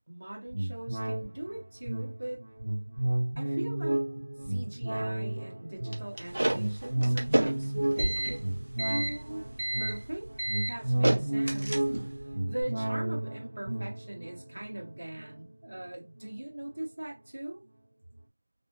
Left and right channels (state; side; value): inverted; both; correlation -1.00